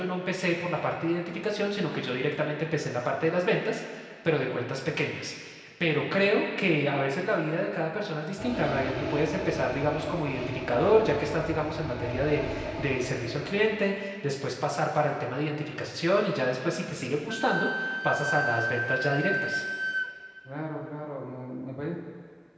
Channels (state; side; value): identical; both; correlation 1.00